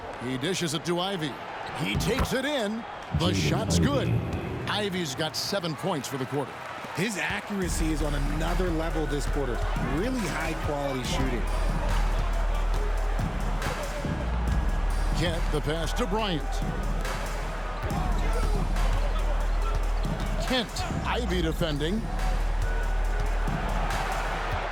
He dishes it to Ivy. He takes it in. The shot's good. Ivy's got 7 points for the quarter. His accuracy is on another level this quarter. Really high-quality shooting. Kent, the pass to Bryant. Kent, Ivy defending.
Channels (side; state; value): both; identical; correlation 1.00